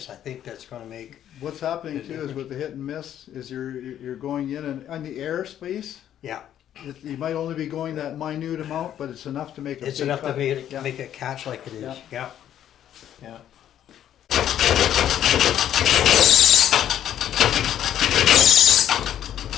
I think that's gonna make, What's happening too is with the hit and miss, is you're going in and on the airspace, yeah, you might only be going that minute amount, but it's enough to make a it's big enough to cut. Yeah. make it catch like it is. Yeah. Yeah.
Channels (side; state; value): right; quieter; 10.7 dB